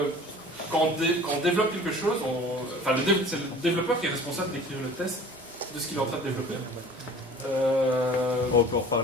quand on développe quelque chose, c'est le développeur qui est responsable d'écrire le test de ce qu'il est en train de développer. On peut en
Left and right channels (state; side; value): normal; both; correlation 0.45